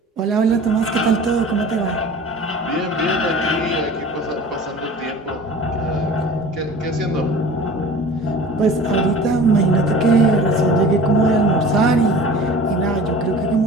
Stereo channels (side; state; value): both; normal; correlation 0.42